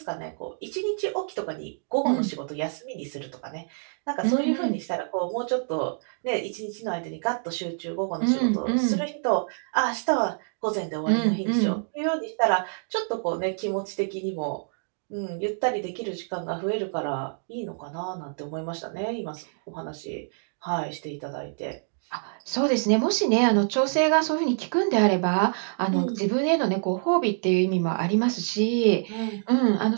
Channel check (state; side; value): silent; left; digital silence